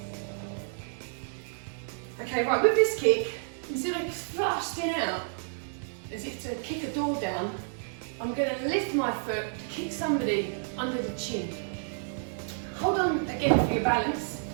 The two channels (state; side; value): silent; left; digital silence